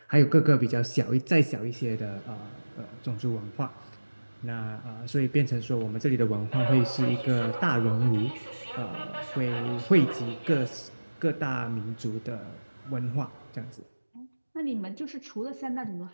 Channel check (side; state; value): both; inverted; correlation -1.00